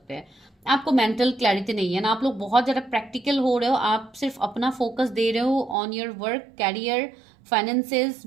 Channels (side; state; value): left; drops out; at 5.8 s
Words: हैं। आपको मेंटल क्लैरिटी नहीं है ना, आप लोग बहुत ज़्यादा प्रैक्टिकल हो रहे हो, आप सिर्फ अपना फोकस दे रहे हो on your work, career, finances,